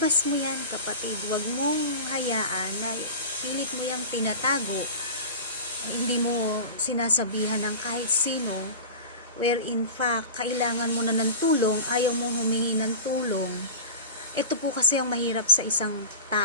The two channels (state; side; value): inverted; both; correlation -0.32